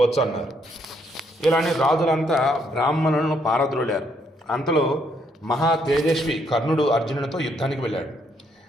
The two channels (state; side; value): normal; both; correlation 0.71